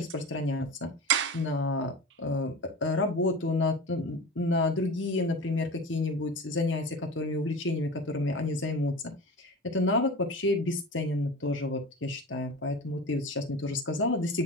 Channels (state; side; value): normal; both; correlation 0.32